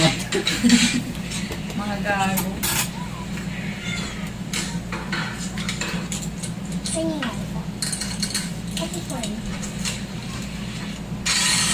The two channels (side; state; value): both; identical; correlation 1.00